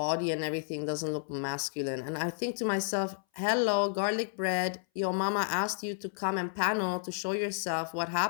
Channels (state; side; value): silent; right; 57 dB below the other